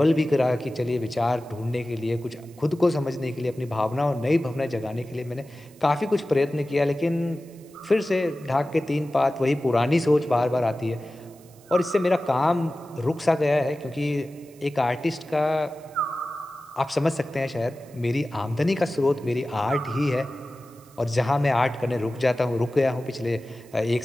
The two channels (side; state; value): right; noise; hiss, 27 dB below the sound